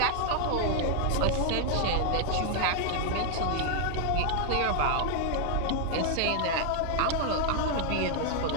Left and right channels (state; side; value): different; both; correlation 0.00